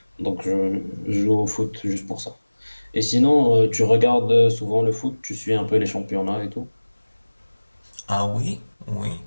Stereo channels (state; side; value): inverted; both; correlation -1.00